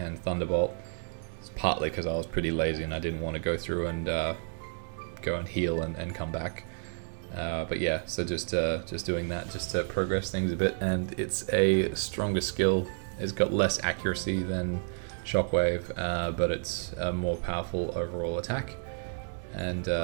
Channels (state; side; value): silent; left; digital silence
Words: Thunderbolt. It's partly because I was pretty lazy and I didn't want to go through and go and heal and come back. But yeah, so just doing that just to progress things a bit. And it's a stronger skill. It's got less accuracy than Shockwave, but it's a more powerful overall attack. And